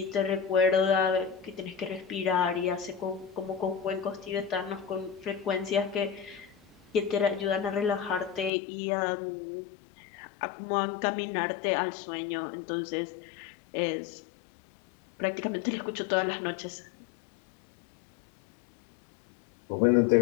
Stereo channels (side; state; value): right; drops out; at 8.5 s